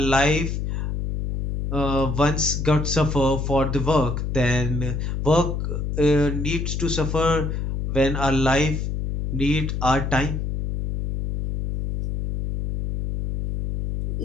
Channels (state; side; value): noise; left; hum, 2 dB below the sound